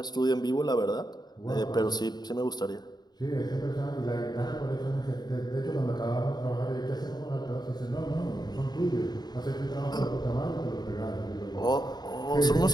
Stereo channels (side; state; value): right; late; 0.20 ms